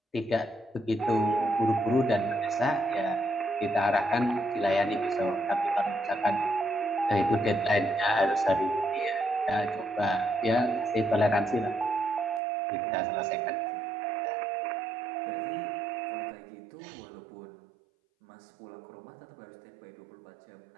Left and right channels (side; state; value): left; drops out; at 12.4 s